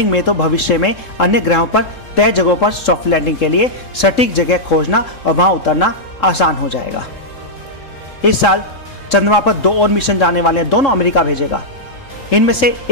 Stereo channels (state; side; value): late; right; 3.7 ms